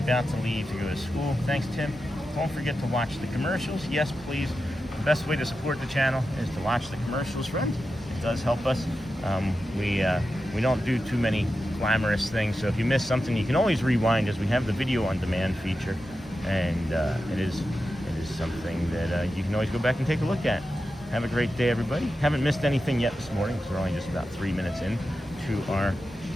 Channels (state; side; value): normal; both; correlation 0.91